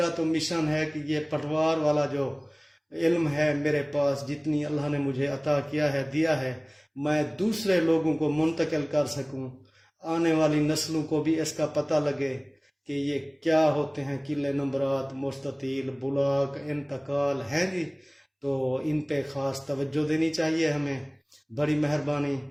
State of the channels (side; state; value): both; identical; correlation 1.00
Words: تو مشن ہے کہ یہ پٹوار والا جو علم ہے میرے پاس، جتنی اللہ نے مجھے عطا کیا ہے، دیا ہے، میں دوسرے لوگوں کو منتقل کر سکوں، آنے والی نسلوں کو بھی اس کا پتہ لگے کہ یہ کیا ہوتے ہیں قلعے نمبرات، مستطیل، بلاک، انتقال ہیں جی، تو ان پہ خاص توجہ دینی چاہیے ہمیں۔ بڑی مہربانی،